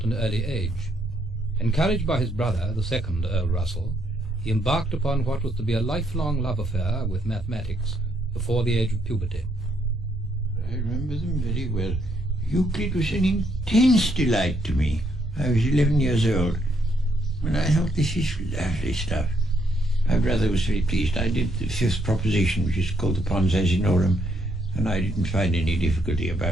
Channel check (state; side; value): normal; both; correlation 0.74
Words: an early age. Encouraged by his brother, the second Earl Russell, he embarked upon what was to be a lifelong love affair with mathematics before the age of puberty. I remember them very well. Euclid was an intense delight to me. I was 11 years old, and I thought, this is lovely stuff. My brother was very pleased. I did the fifth proposition, which is called the Pons Asinorum, and I didn't find any difficulty